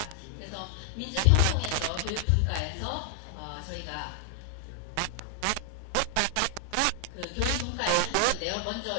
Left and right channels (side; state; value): both; different; correlation 0.00